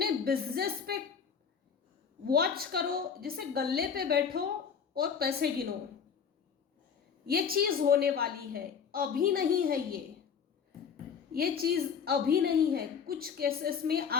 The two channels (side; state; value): right; quieter; 6.8 dB